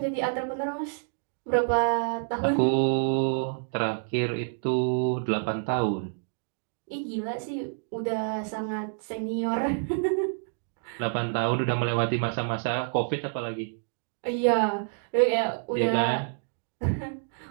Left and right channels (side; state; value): left; silent; digital silence